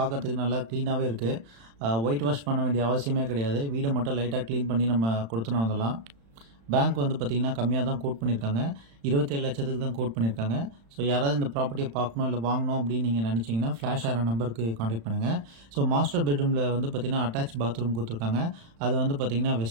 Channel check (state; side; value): late; left; 35 ms